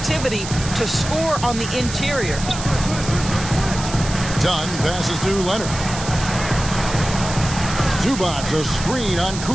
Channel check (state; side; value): noise; right; hiss, 9 dB below the sound